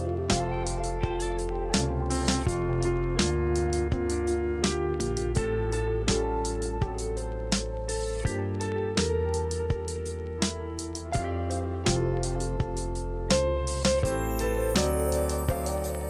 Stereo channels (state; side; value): identical; both; correlation 1.00